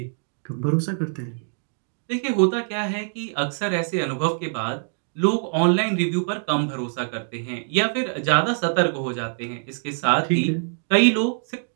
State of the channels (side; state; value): left; silent; 63 dB below the other